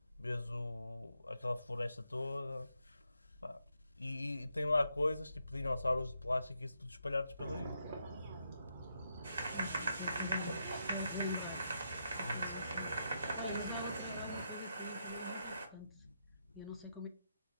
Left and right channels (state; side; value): inverted; both; correlation -0.81